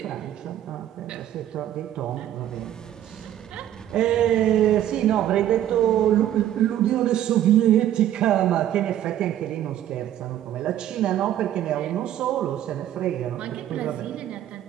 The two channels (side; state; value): left; quieter; 11.8 dB